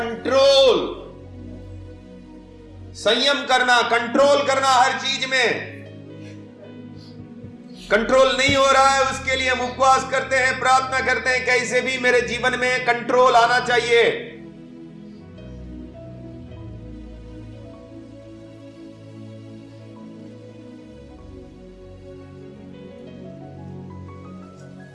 संयम करना, कंट्रोल करना हर चीज में। कंट्रोल नहीं हो रहा है, उसके लिए हम उपवास करते हैं, प्रार्थना करते हैं, कैसे भी मेरे जीवन में कंट्रोल आना चाहिए।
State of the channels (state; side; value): identical; both; correlation 1.00